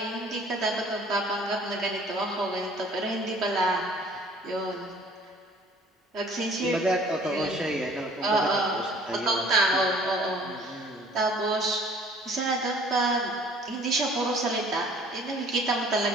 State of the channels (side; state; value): both; normal; correlation 0.53